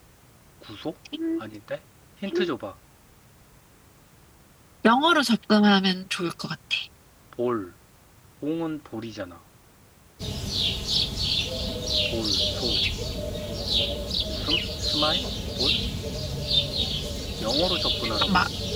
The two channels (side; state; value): both; identical; correlation 1.00